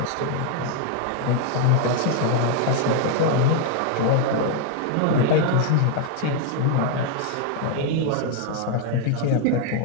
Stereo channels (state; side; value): different; both; correlation 0.00